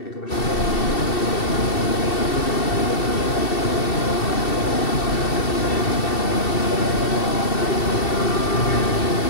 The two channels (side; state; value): right; late; 2.7 ms